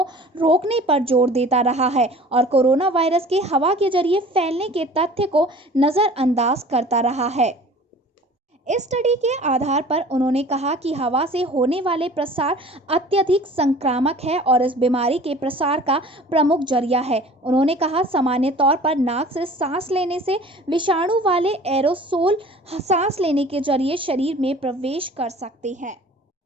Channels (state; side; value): normal; both; correlation 0.45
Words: रोकने पर जोर देता रहा है और कोरोना वायरस के हवा के जरिए फैलने के तथ्य को नजरअंदाज करता रहा है। इस स्टडी के आधार पर उन्होंने कहा कि हवा से होने वाले प्रसार अत्यधिक संक्रामक है और इस बीमारी के प्रसार का प्रमुख जरिया है। उन्होंने कहा, सामान्य तौर पर नाक से सांस लेने से विषाणु वाले एरोसोल सांस लेने के जरिए शरीर में प्रवेश कर सकते हैं।